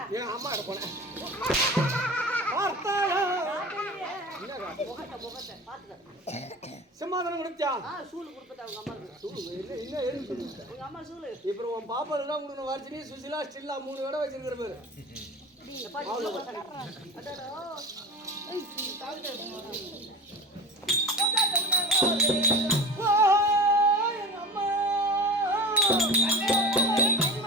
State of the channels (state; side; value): normal; both; correlation 0.33